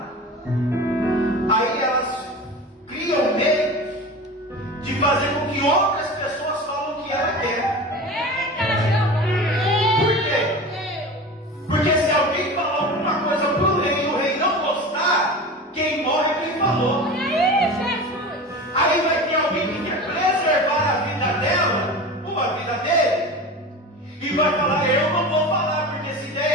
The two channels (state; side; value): normal; both; correlation 0.32